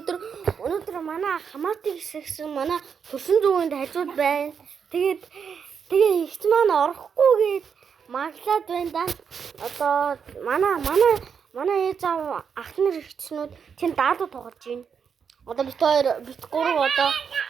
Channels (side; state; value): left; quieter; 6.8 dB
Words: манай хамаатан хэсэг манай төрсөн зүгэнд хажууд байна. Тэгээ ихч маань орохгүй гээд маглаад байна да. Одоо манай ээж аав ах нар ихчнүүд тэнд даадуу тоглож байна. Одоо бит 3